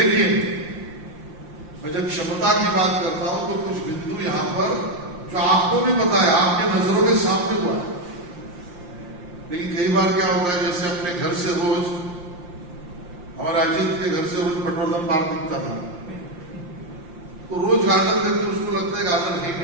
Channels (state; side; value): late; left; 5.7 ms